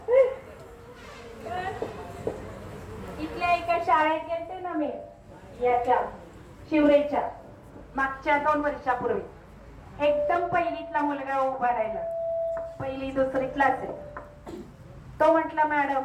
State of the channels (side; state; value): both; identical; correlation 1.00